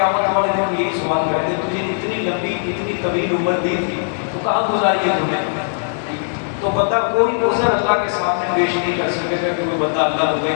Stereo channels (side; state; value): right; silent; digital silence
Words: والے دن یہی سوال کریں گے، تجھے اتنی لمبی اتنی طویل عمر دی تھی تو کہاں گزاری ہے تم نے؟ تو بندہ کوئی عذر اللہ کے سامنے پیش نہیں کر سکے گا کہ کوئی بندہ اللہ کو کہے